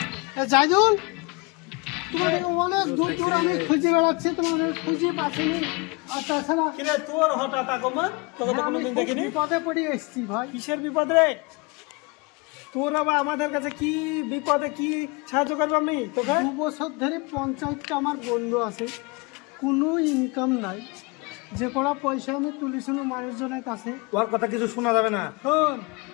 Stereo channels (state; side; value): quieter; right; 28.2 dB